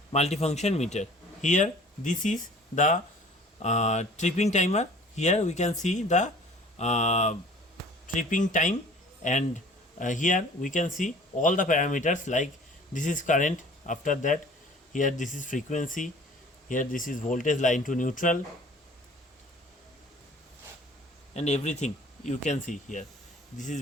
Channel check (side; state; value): both; normal; correlation 0.49